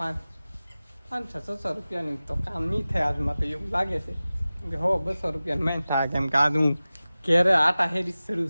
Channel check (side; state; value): both; inverted; correlation -0.97